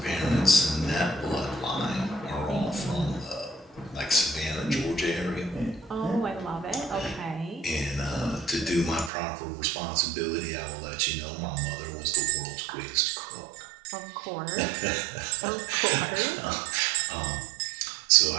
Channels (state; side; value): drops out; left; at 9.1 s